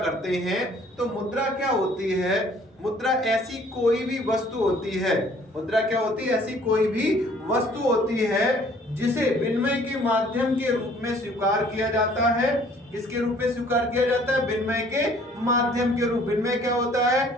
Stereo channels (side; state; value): both; normal; correlation 0.57